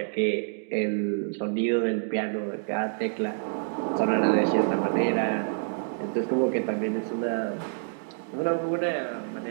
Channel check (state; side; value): silent; left; digital silence